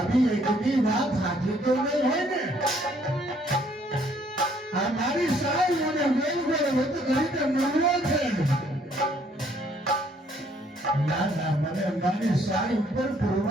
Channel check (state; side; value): normal; both; correlation 0.65